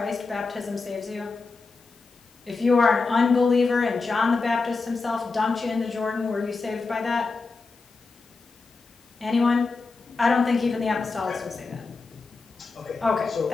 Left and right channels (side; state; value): right; quieter; 4.1 dB